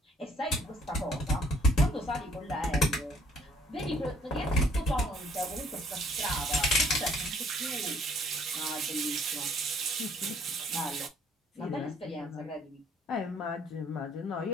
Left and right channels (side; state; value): both; normal; correlation 0.61